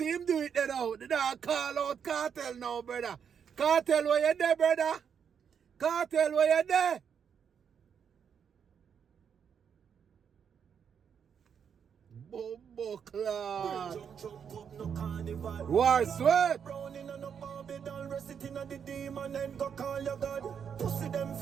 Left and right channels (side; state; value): left; quieter; 7.4 dB